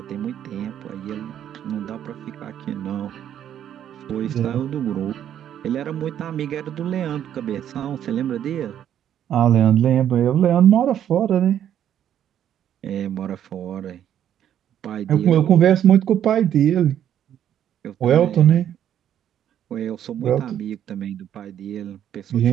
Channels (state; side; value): quieter; left; 10.2 dB